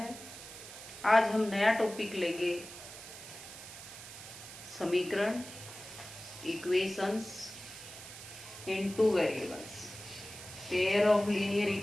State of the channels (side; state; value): right; noise; hiss, 13 dB below the sound